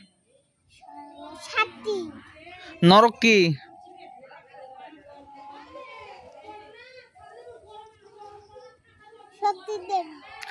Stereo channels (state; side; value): identical; both; correlation 1.00